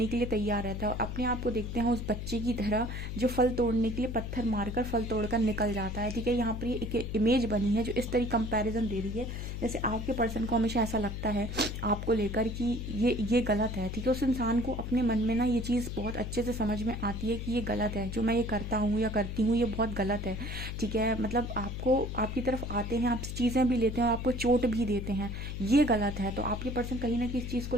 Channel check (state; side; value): noise; left; hum, 5 dB below the sound